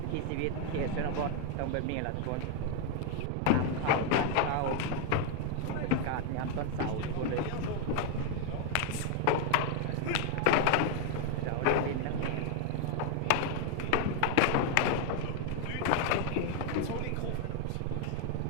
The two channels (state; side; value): different; both; correlation 0.00